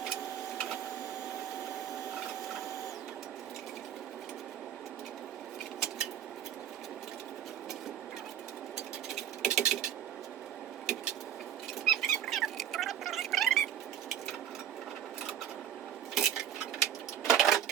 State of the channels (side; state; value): left; quieter; 10.2 dB